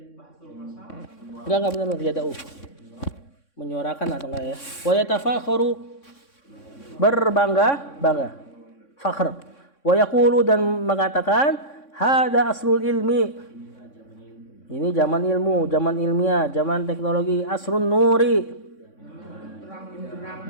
bahtul masalah. Enggak benar yad'u. Menyuarakan atau enggak ya? Wa yatafakharu, berbangga. Fakhr. Wa yaqulu, dan mengatakan hada asrul ilmi. Ini zaman ilmu, zaman ilmiah, zaman teknologi. Asrun nuri,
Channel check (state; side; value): late; right; 3.6 ms